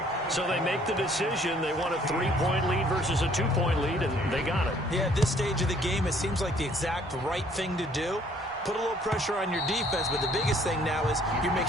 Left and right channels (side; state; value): both; normal; correlation 0.60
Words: So they make the decision. They want a 3-point lead versus a 2-point lead, and they got it. Yeah, at this stage of the game, it seems like the exact right thing to do. Put a little pressure on your defense, but the biggest thing now is you're